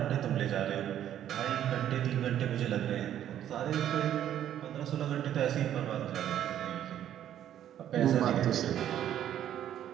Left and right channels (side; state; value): left; quieter; 10.9 dB